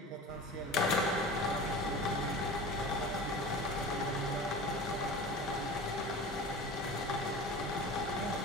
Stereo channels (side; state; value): both; normal; correlation 0.35